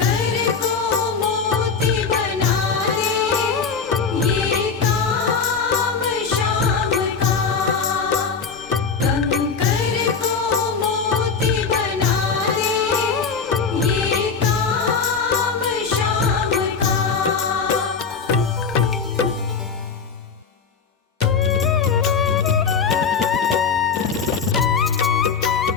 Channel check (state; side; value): quieter; right; 5.5 dB